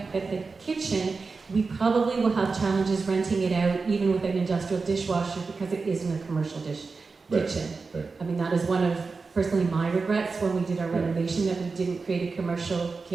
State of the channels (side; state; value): left; quieter; 4.4 dB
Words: that the kitchen, we probably will have challenges renting it out even with an industrial dishwasher because it isn't a commercial kitchen. Right. I mean, that is one of, personally, my regrets when we did our Yeah. renovation, that we didn't create a commercial